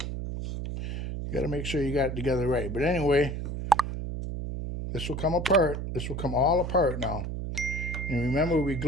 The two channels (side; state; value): right; noise; hum, 4 dB below the sound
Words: You got to make sure you got it together right. But anyway, this will come apart. This will come all apart now. And remember, we